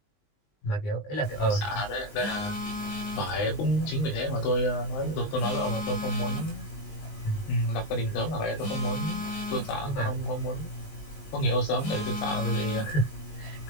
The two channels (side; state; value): right; late; 19 ms